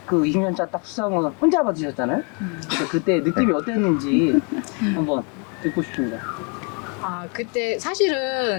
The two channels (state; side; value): quieter; right; 35.7 dB